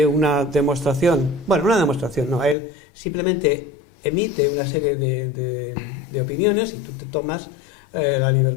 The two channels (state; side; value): drops out; right; at 2.6 s